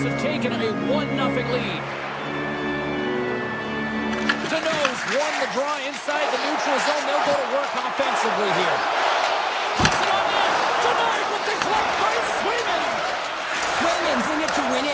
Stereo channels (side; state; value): both; identical; correlation 1.00